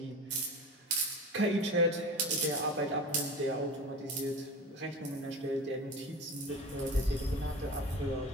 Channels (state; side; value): normal; both; correlation 0.31